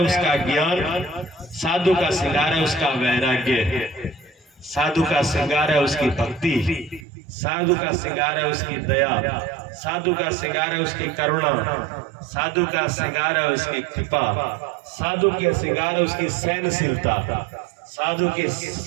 उसका ज्ञान, साधु का श्रृंगार है उसका वैराग्य, साधु का श्रृंगार है उसकी भक्ति, साधु का श्रृंगार है उसकी दया, साधु का श्रृंगार है उसकी करुणा, साधु का श्रृंगार है उसकी कृपा, साधु के श्रृंगार है उसकी सहनशीलता, साधु के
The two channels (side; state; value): left; drops out; at 7.1 s